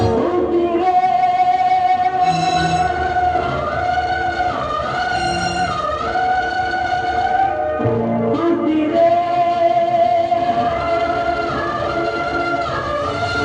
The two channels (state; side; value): identical; both; correlation 1.00